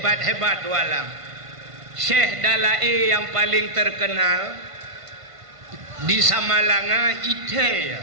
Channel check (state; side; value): late; left; 1.5 ms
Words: tualang. Syekh Dalai yang paling terkenal di Samalanga ite